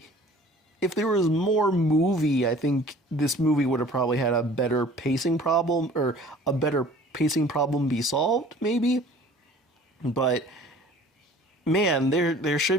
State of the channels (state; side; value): normal; both; correlation 0.49